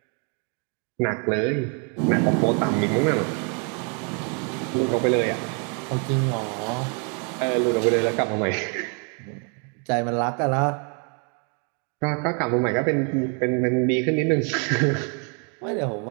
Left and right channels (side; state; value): left; quieter; 38.2 dB